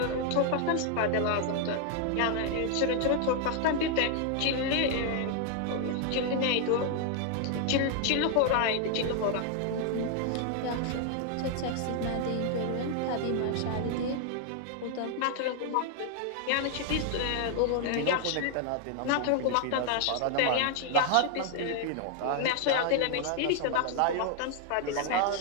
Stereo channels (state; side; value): different; both; correlation 0.00